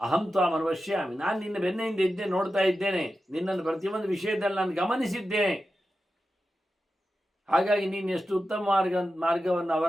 ಅಹಂ ತ್ವಾಂ ಅನುಪಶ್ಯಾಮಿ. ನಾನು ನಿನ್ನ ಬೆನ್ನೆಯಿಂದ ಇದ್ದೆ, ನೋಡ್ತಾ ಇದ್ದೇನೆ. ನಿನ್ನನ್ನು ಪ್ರತಿಯೊಂದು ವಿಷಯದಲ್ಲಿ ನಾನು ಗಮನಿಸಿದ್ದೇನೆ. ಹಾಗಾಗಿ ನೀನು ಎಷ್ಟು ಉತ್ತಮ ಮಾರ್ಗವನ್ನು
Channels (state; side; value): normal; both; correlation 0.92